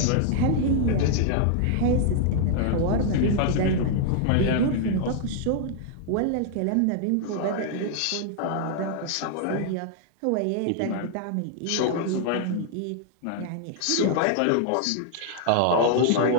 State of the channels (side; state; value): both; different; correlation -0.01